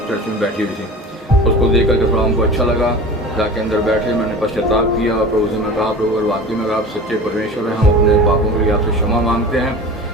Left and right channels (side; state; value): both; normal; correlation 0.36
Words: चर्च में बैठी हुई थी। उसको देख करके थोड़ा हमको अच्छा लगा, जाके अंदर बैठे, मैंने पश्चाताप किया और प्रभु से मैं कहा प्रभु अगर वाकई में अगर आप सच्चे परमेश्वर हैं, हम अपने पापों के लिए आपसे क्षमा मांगते हैं